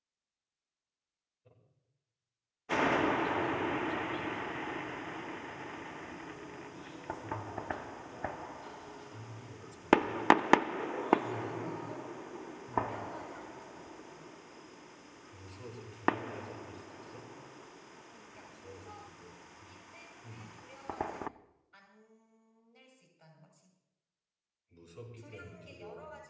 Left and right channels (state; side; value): identical; both; correlation 1.00